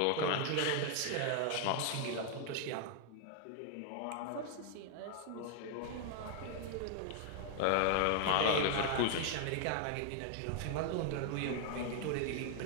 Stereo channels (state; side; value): different; both; correlation 0.00